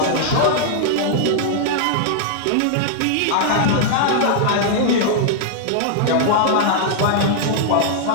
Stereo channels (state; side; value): different; both; correlation -0.01